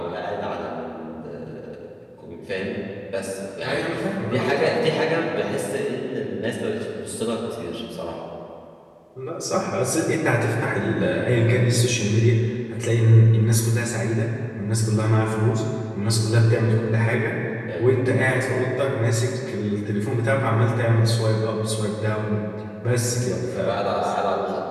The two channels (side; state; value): both; identical; correlation 1.00